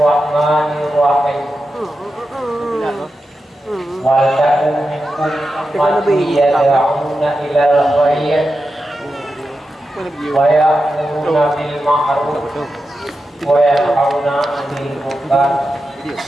Wal takum minkum ummatun yad'una ilal khair wa ya'muruna bil ma'ruf wa yanhauna 'anil munkar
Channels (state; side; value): normal; both; correlation 0.90